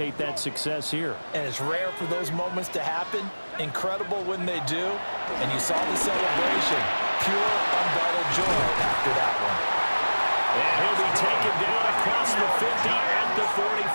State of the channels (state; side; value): inverted; both; correlation -1.00